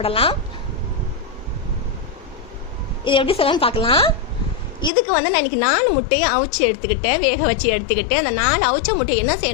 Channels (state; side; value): drops out; right; at 4.9 s